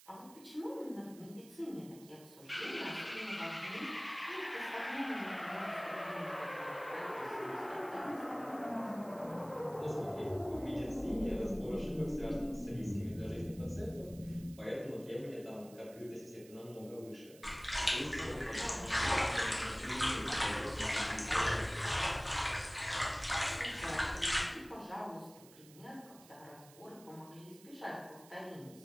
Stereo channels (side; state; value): right; noise; hiss, 21 dB below the sound